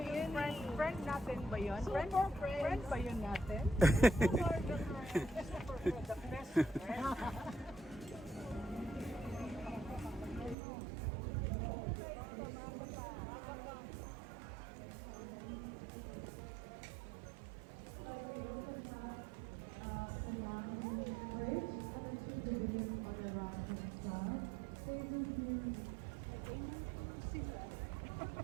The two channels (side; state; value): left; drops out; at 10.6 s